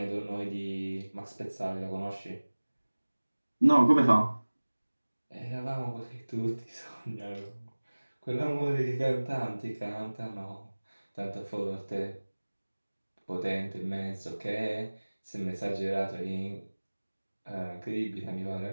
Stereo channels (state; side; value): inverted; both; correlation -1.00